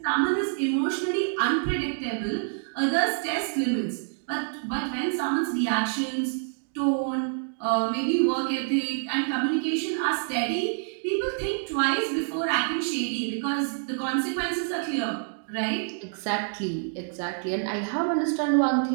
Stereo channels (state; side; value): silent; left; digital silence